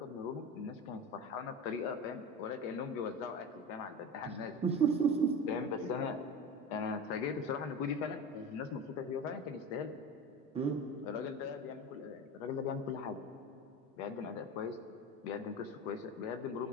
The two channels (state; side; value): normal; both; correlation 0.28